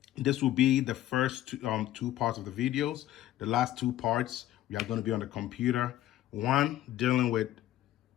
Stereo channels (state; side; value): quieter; right; 13.5 dB